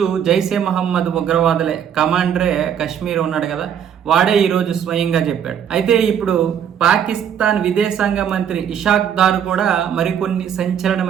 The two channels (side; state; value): left; quieter; 8.6 dB